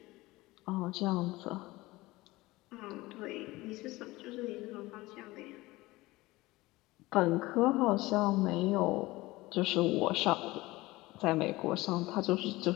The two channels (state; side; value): quieter; right; 20.0 dB